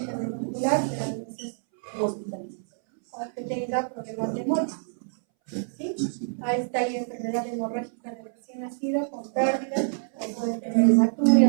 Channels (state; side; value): silent; left; 60 dB below the other